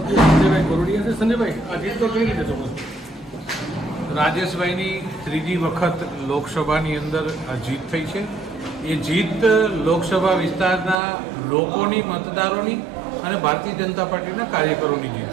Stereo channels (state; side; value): drops out; left; at 11.0 s